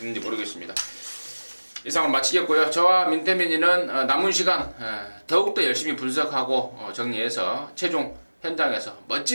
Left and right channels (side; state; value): both; inverted; correlation -1.00